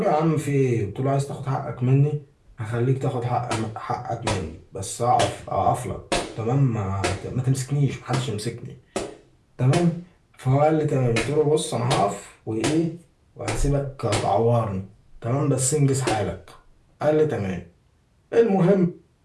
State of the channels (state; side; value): identical; both; correlation 1.00